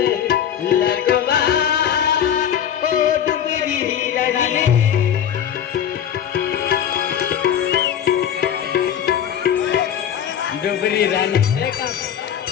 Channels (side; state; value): right; quieter; 9.3 dB